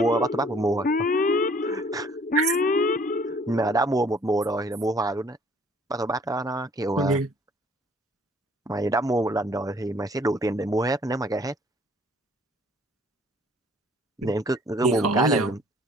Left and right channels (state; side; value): normal; both; correlation 0.57